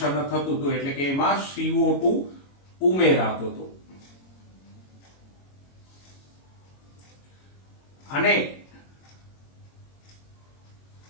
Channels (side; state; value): right; late; 22 ms